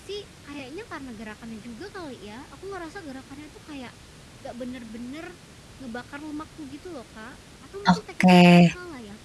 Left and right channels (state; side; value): identical; both; correlation 1.00